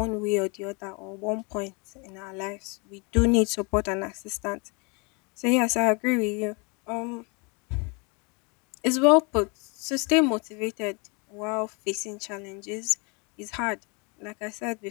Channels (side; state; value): right; quieter; 31.6 dB